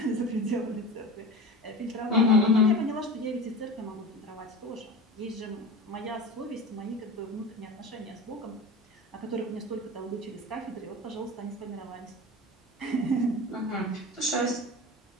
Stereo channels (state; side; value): normal; both; correlation 0.31